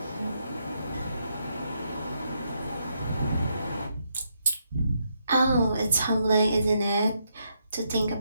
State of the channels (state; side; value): inverted; both; correlation -0.78